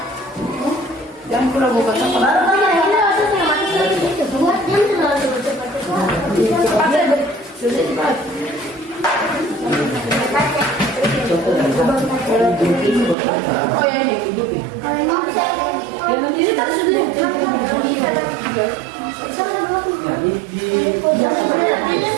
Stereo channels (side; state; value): left; drops out; at 13.2 s